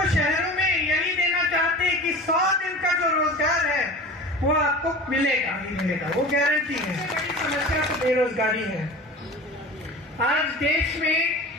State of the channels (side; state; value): both; normal; correlation 0.36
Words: शहरों में यही देना चाहते हैं कि 100 दिन का जो रोजगार है वो आपको मिलेगा ही मिलेगा, वो गारंटी है। बड़ी समस्या तो बेरोजगारी है। आज देश में